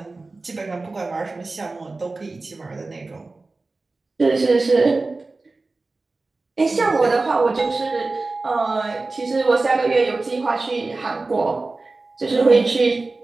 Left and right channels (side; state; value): left; quieter; 3.5 dB